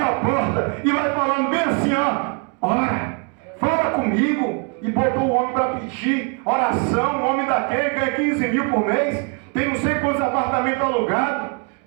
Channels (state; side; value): quieter; left; 35.7 dB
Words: a porta e vai falando bem assim: ora, fala comigo. E botou o homem para pedir oração. O homem daquele ganha 15 mil por mês, tem não sei quantos apartamentos alugados,